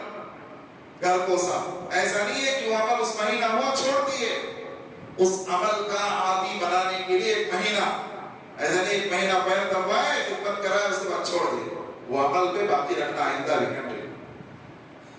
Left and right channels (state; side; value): identical; both; correlation 1.00